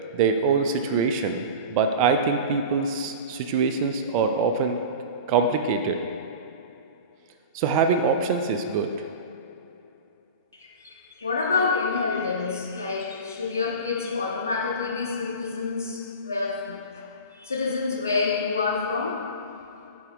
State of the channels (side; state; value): both; inverted; correlation -0.31